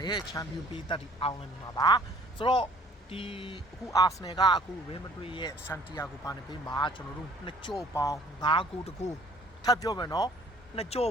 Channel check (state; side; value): normal; both; correlation 0.56